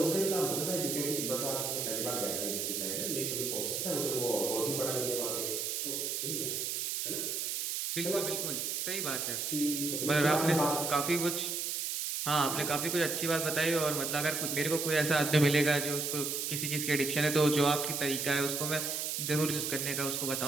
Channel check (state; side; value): noise; right; hiss, 1 dB below the sound